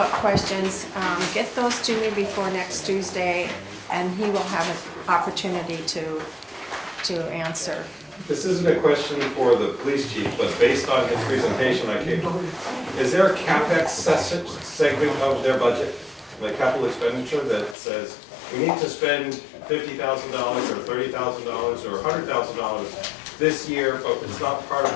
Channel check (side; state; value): right; drops out; at 17.8 s